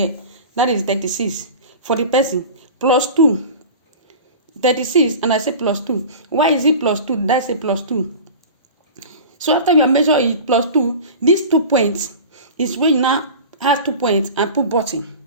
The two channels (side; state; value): both; inverted; correlation -0.35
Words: that is 36 for the person, plus 2. 36, and I say plus 2. Why is it plus 2? That's a plus 2. So after you measure it plus 2, these 2 points is when you now have 2 points and put button.